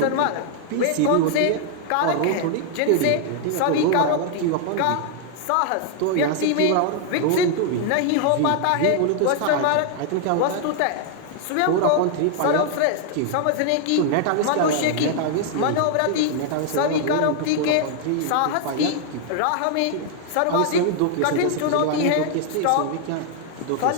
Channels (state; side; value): different; both; correlation 0.00